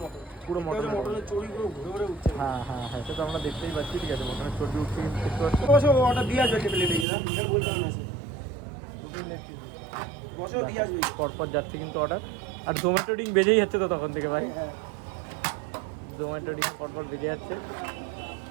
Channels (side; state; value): left; drops out; at 7.1 s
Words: পুরো মটন, মটনের চর্বিগুলো ঘুরে ঘুরে উঠছে। হ্যাঁ হ্যাঁ হ্যাঁ, সেটা আমরা দেখতেই পাচ্ছি, ঠিক আছে। মটনের চর্বি উঠছে কিন্তু দেখতে পাচ্ছি। বসো ওটা দিয়ে আসবে প্লেটে, না এখানে বলতে হবে না সে। বসো দিয়ে আসবে। পরপর যাচ্ছে কিন্তু অর্ডার, আর জোম্যাটো রিং বেজেই যাচ্ছে তো তখন থেকে ভাই। জোম্যাটো রিং পরপর বেজে যাচ্ছে।